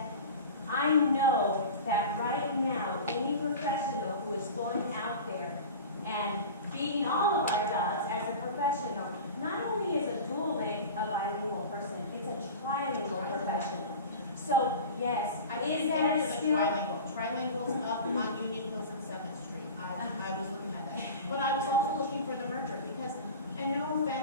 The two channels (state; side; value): inverted; both; correlation -0.34